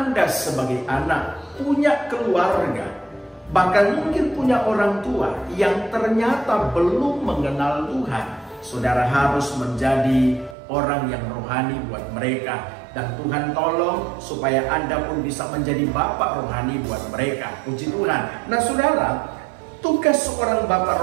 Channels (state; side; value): drops out; left; at 10.6 s